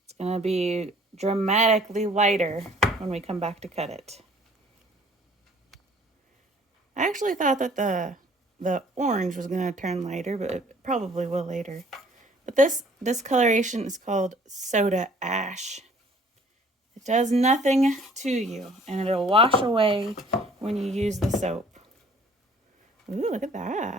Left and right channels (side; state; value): both; normal; correlation 0.55